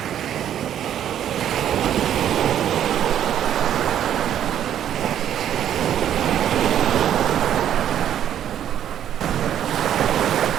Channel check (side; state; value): left; quieter; 10.4 dB